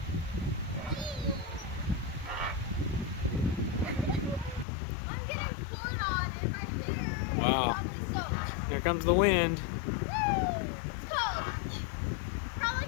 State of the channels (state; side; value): drops out; right; at 4.7 s